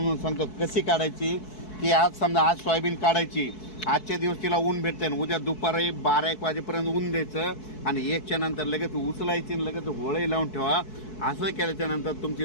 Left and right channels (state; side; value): late; right; 4.6 ms